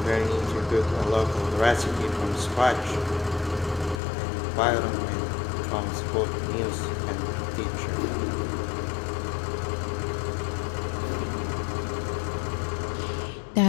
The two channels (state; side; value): drops out; right; at 4.0 s